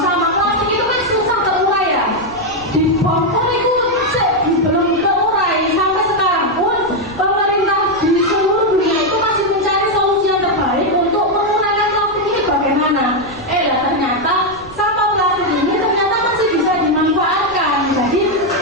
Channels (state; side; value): noise; right; rumble, 22 dB below the sound